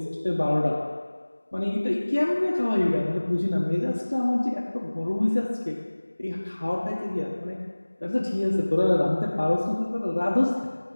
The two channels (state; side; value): inverted; both; correlation -1.00